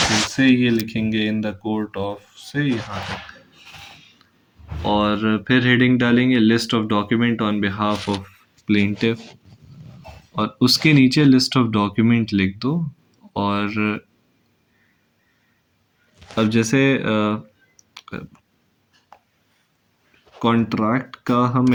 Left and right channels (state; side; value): identical; both; correlation 1.00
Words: से ये लिखेंगे इन द कोर्ट ऑफ से यहाँ तक, और फिर हेडिंग डालेंगे list of document on behalf of plaintiff, और उसके नीचे लिस्ट ऑफ डॉक्यूमेंट लिख दो। और अब जैसे कॉन्ट्रैक्ट का हम